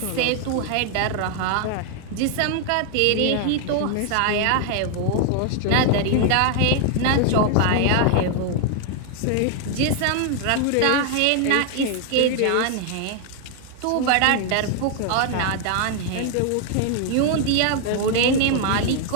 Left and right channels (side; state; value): both; different; correlation 0.00